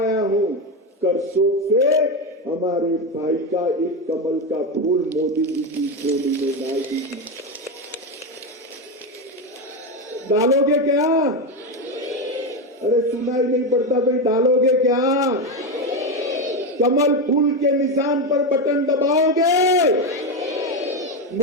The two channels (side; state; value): both; normal; correlation 0.13